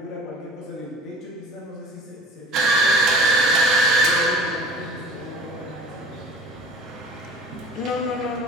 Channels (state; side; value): normal; both; correlation 0.42